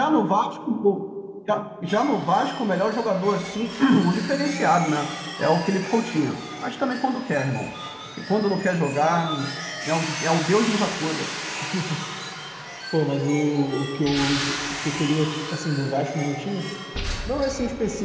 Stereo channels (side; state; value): both; identical; correlation 1.00